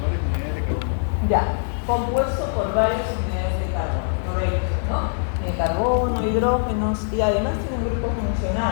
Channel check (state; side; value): silent; right; digital silence